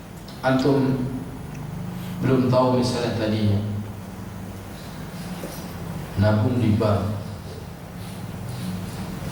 Antum belum tahu misalnya tadinya nabung di bank,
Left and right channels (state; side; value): identical; both; correlation 1.00